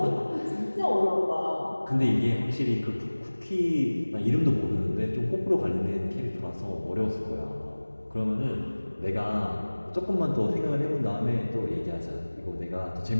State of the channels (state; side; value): inverted; both; correlation -1.00